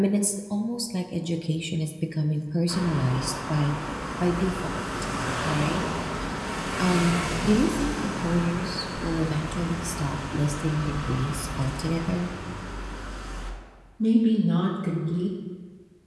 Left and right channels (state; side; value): identical; both; correlation 1.00